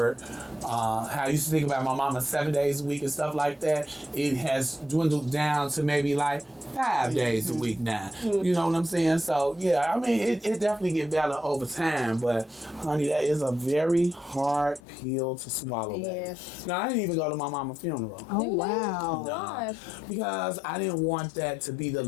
how I used to think about my mama 7 days a week and stuff like that, it has dwindled down to maybe like 5 days a week now. You know what I'm saying? So yeah, I mean, it definitely get better over time, but honey, that is a very hard pill to swallow. Yes. Now, I didn't even go to my mama's funeral. Oh, wow. No, because I didn't want that to be the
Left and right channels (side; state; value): right; drops out; at 14.8 s